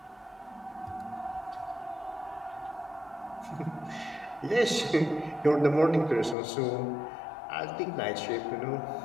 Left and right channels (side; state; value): right; drops out; at 6.4 s